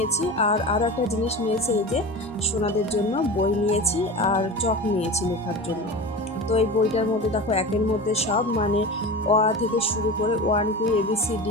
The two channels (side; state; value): right; noise; hum, 24 dB below the sound